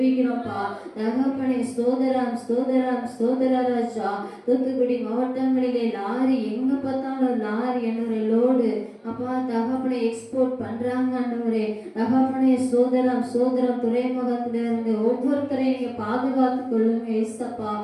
தகப்பனே ஸ்தோத்திரம் ஸ்தோத்திரம் ஸ்தோத்திர ராஜா. தூத்துக்குடி மாவட்டங்களிலே லாரி எங்க பார்த்தாலும் லாரி ஆண்டவரே லோடு அப்பா தகப்பனை எக்ஸ்போர்ட் பண்றாங்க ஆண்டவரே. தகப்பனை சோதரம் சோதரம் துறைமுகத்தில இருந்து ஒவ்வொருத்தரையும் நீங்க பாதுகாத்து கொள்ளுங்க ஏசப்பா.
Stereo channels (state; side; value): identical; both; correlation 1.00